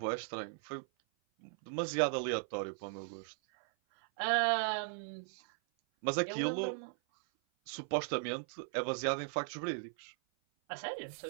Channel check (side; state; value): left; silent; 53 dB below the other